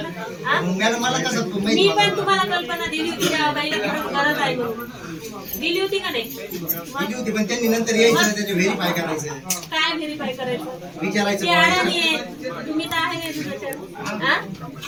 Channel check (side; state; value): both; identical; correlation 1.00